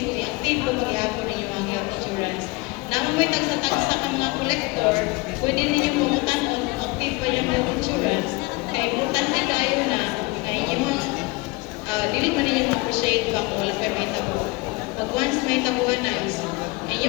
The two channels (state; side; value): quieter; right; 24.6 dB